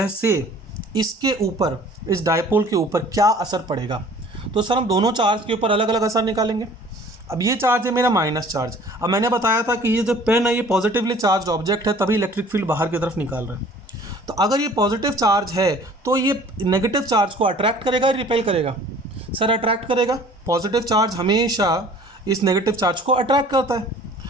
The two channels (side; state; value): both; normal; correlation 0.50